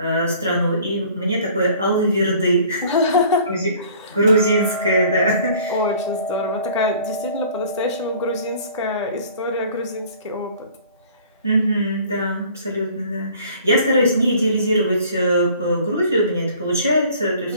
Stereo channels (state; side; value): inverted; both; correlation -0.51